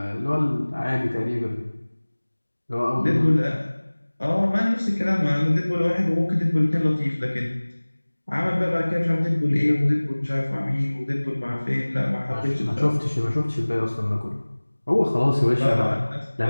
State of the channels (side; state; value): both; inverted; correlation -1.00